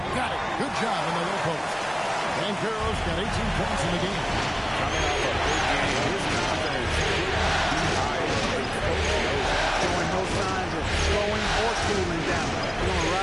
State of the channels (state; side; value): identical; both; correlation 1.00